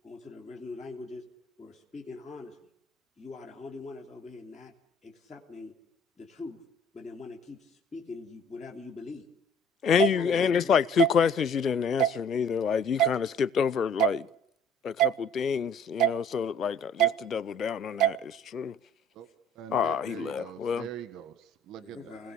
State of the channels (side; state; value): both; normal; correlation 0.54